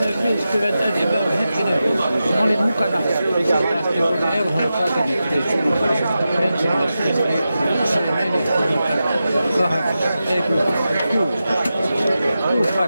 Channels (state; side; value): inverted; both; correlation -0.92